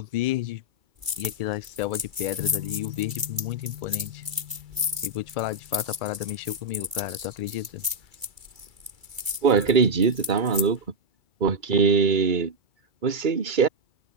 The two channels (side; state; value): left; late; 2.3 ms